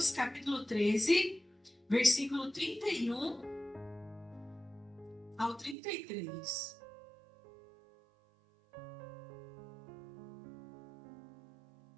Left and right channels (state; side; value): drops out; left; at 5.8 s